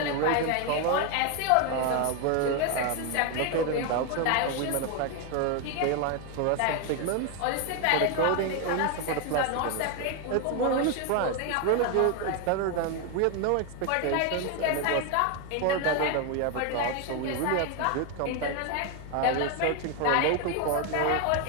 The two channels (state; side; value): different; both; correlation 0.01